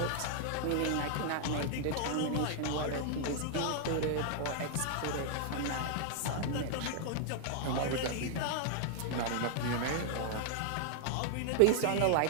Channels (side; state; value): both; different; correlation 0.00